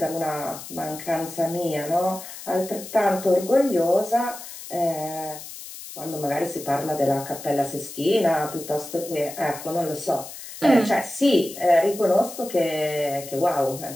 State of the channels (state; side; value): noise; left; hiss, 13 dB below the sound